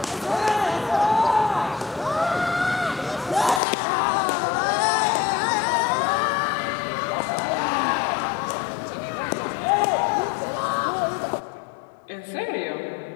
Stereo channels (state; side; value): drops out; right; at 3.6 s